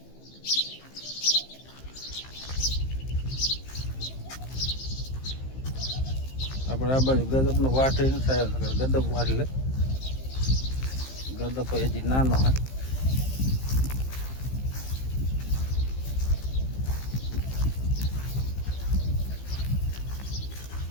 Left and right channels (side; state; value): right; late; 15 ms